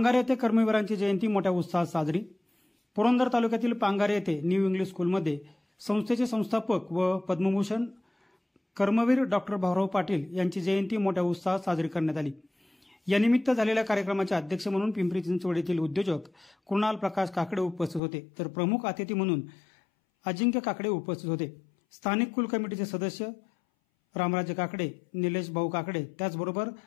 येथे कर्मवीरांची जयंती मोठ्या उत्साहात साजरी। पुरंदर तालुक्यातील पांगारे येथे न्यू इंग्लिश स्कूलमध्ये संस्थेचे संस्थापक व पद्मभूषण कर्मवीर डॉक्टर भाऊराव पाटील यांची जयंती मोठ्या उत्साहात साजरी करण्यात आली। यानिमित्त झालेल्या कार्यक्रमाचे अध्यक्ष म्हणून पिंपरी चिंचवड येथील उद्योजक कुणाल प्रकाश काकडे उपस्थित होते, तर प्रमुख अतिथी म्हणून अजिंक्य काकडे उपस्थित होते। स्थानिक कुल कमिटीचे सदस्य रामराजे काकडे, निलेश भाऊ काकडे, त्याचबरोबर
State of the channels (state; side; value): drops out; right; at 18.0 s